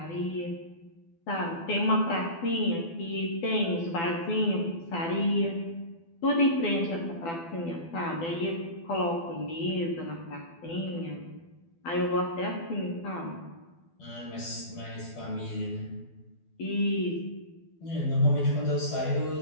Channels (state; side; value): late; right; 12 ms